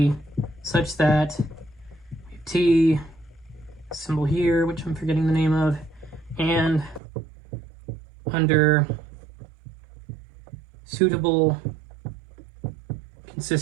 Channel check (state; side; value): drops out; left; at 7.0 s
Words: such that T symbol here, which I'm forgetting the name of, and under suitable